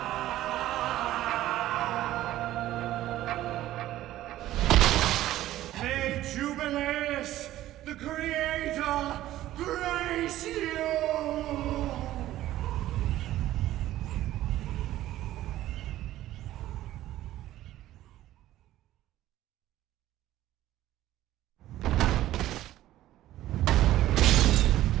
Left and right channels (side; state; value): left; quieter; 14.3 dB